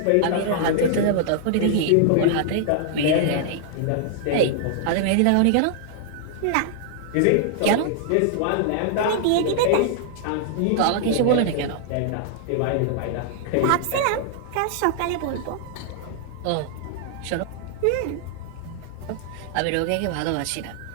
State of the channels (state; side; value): different; both; correlation -0.01